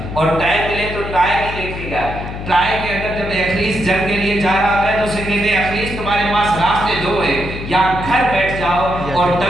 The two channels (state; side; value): noise; left; hum, 8 dB below the sound